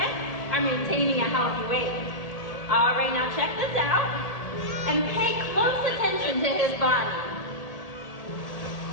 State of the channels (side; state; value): right; late; 1.8 ms